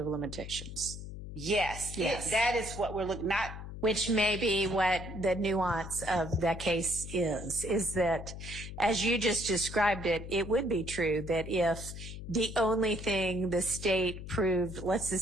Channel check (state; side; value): noise; left; hum, 10 dB below the sound